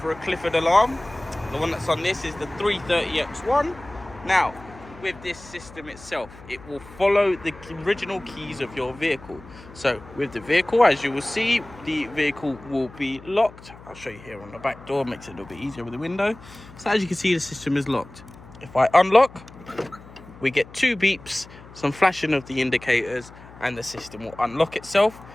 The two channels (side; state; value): left; noise; hum, 19 dB below the sound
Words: a Clifford alarm. The one that's on this is the 330X1. Now, with this system itself, it will follow the original keys of your vehicle. So with the vehicle, as you will see, the vehicle will be locked. I'll show you here on the back door, makes it a little bit easier with the window. So as you can see, the system is locked. If I unlock, we get 2 beeps, some flashing of the indicators, and the system will unlock itself.